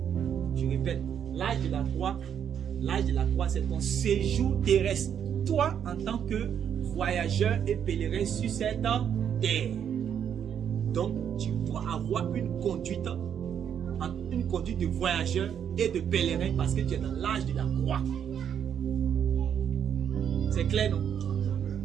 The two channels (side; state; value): left; quieter; 8.6 dB